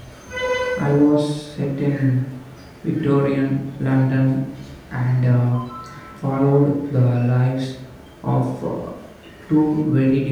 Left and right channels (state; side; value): identical; both; correlation 1.00